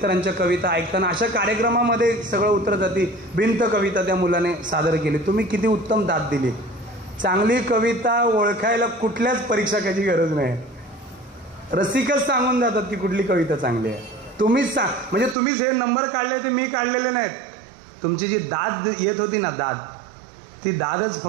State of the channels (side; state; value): left; drops out; at 15.4 s